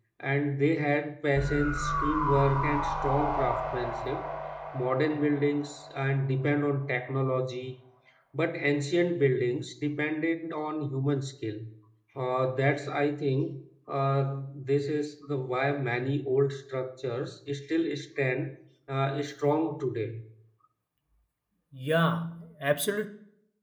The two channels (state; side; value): identical; both; correlation 1.00